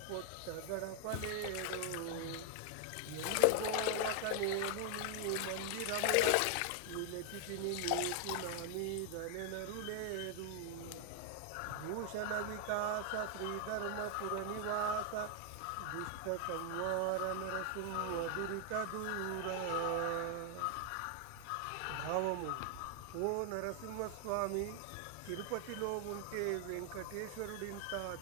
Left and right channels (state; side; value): different; both; correlation 0.00